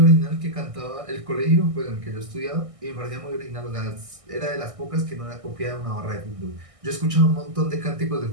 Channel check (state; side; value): late; left; 1.6 ms